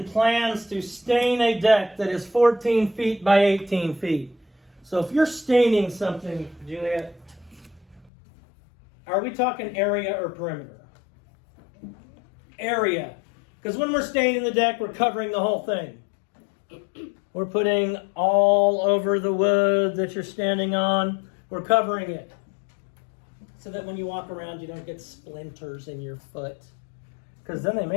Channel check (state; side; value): drops out; right; at 8.1 s